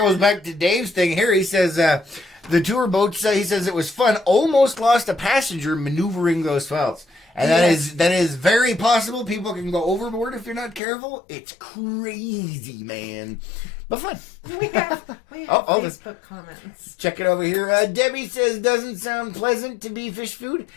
back to Dave's thing here. He says the tour boats, he says it was fun, almost lost a passenger maneuvering those felts. And that is very possible. People can go overboard if you're not careful. It's crazy, man. But fun. We have Facebook comments. Check it over here. Debbie says, doesn't sound pleasant to be fish food.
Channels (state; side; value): drops out; right; at 10.8 s